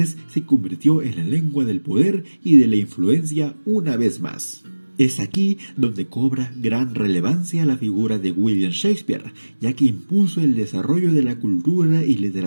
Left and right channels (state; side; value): inverted; both; correlation -1.00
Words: se convirtió en la lengua del poder y de la influencia una vez más. Es aquí donde cobra gran relevancia la figura de William Shakespeare, ya que impuso el desarrollo de la cultura y